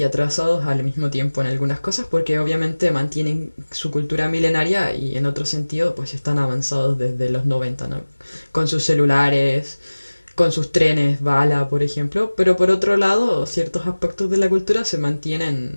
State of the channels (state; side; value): inverted; both; correlation -1.00